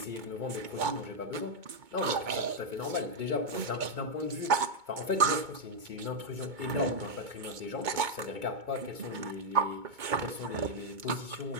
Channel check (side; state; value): left; late; 2.2 ms